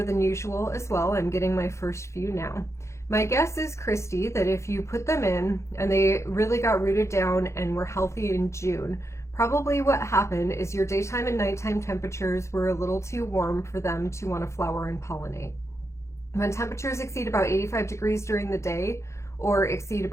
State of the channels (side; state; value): right; late; 0.14 ms